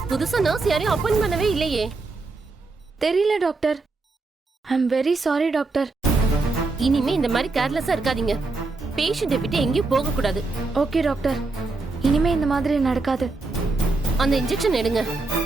புதுசா நர்ஸ் யாரையும் அப்பாயிண்ட் பண்ணவே இல்லையே. தெரியல doctor. I am very sorry doctor. இனிமே இந்த மாதிரி கேர்லெஸ்ஸா இருக்காதீங்க. பேஷண்ட்டை விட்டு எங்கேயும் போக கூடாது. ஓகே டாக்டர், இனிமே இந்த மாதிரி நடக்காது. அந்த இன்ஜெக்ஷன் எடுங்க.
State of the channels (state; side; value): quieter; left; 3.6 dB